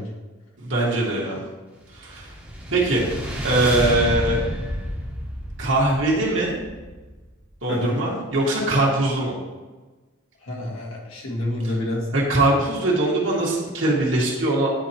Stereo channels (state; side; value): normal; both; correlation 0.38